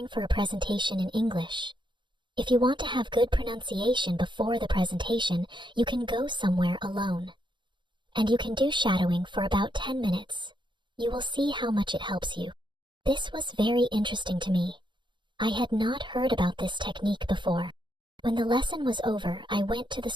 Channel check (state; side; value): late; left; 0.23 ms